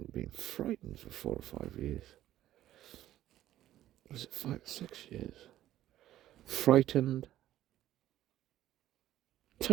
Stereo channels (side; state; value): left; quieter; 13.3 dB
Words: been frightened for 4 or 5 years. Was it 5 or 6 years? Frightened,